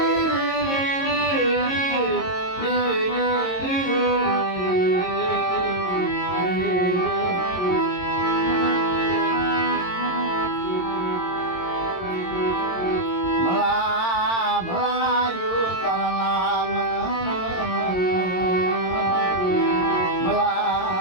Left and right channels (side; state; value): right; late; 22 ms